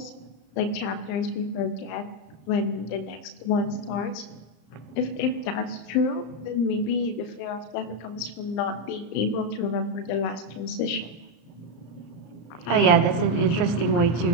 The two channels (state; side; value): late; right; 34 ms